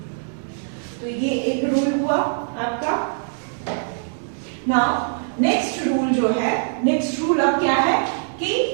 तो ये एक रूल हुआ आपका. नाउ नेक्स्ट रूल जो है, नेक्स्ट रूल अब क्या है कि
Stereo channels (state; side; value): silent; left; 64 dB below the other